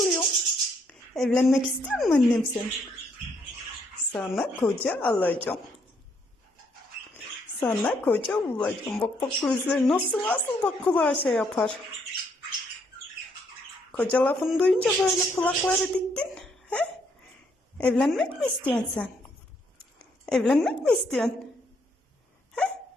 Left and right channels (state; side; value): normal; both; correlation 0.72